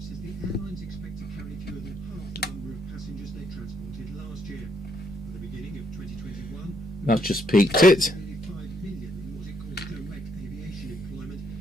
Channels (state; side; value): normal; both; correlation 0.73